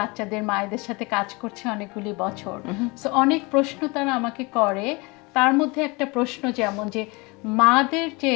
মায়েদের সাথে কাজ করছে অনেকগুলি বছর, সো অনেক প্রশ্ন তারা আমাকে করে। তার মধ্যে একটা প্রশ্ন যেমন যে মাদের যে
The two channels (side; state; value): right; quieter; 26.5 dB